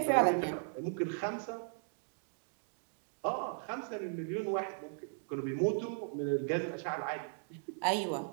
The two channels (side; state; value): left; silent; digital silence